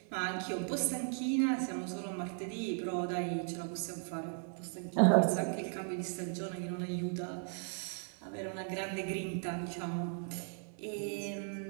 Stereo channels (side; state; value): left; silent; 53 dB below the other